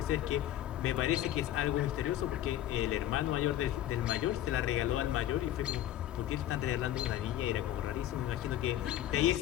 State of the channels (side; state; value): right; quieter; 12.8 dB